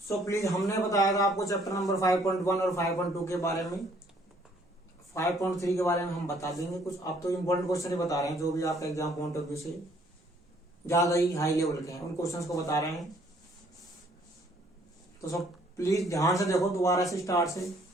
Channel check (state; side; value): normal; both; correlation 0.63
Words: प्लीज, हमने बताया था आपको चैप्टर नंबर 5.1 और 5.2 के बारे में। 5.3 के बारे में हम बता देंगे कुछ। आप तो इम्पोर्टेंट क्वेश्चन ही बता रहे हैं, जो भी आपका एग्जाम पॉइंट ऑफ व्यू से ज्यादा ही हाई लेवल के हैं उन क्वेश्चंस को बता रहे हैं। तो सब प्लीज ध्यान से देखो, दोबारा से स्टार्ट से